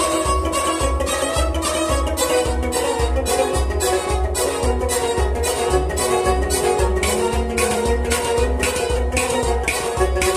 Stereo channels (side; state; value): both; identical; correlation 1.00